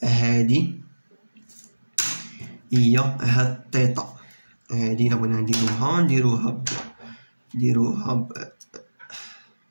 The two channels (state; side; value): inverted; both; correlation -1.00